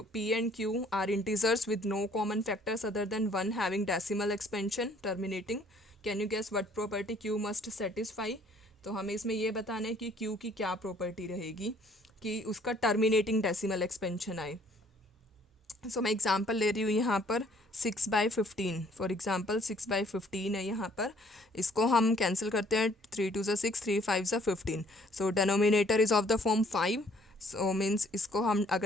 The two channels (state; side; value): normal; both; correlation 0.60